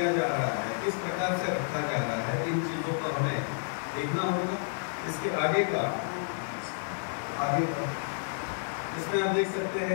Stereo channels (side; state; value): right; silent; digital silence